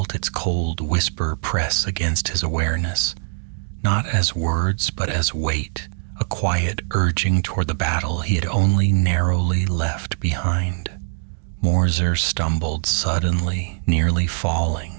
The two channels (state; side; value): silent; left; digital silence